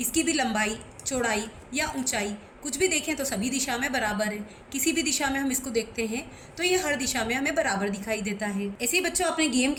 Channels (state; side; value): identical; both; correlation 1.00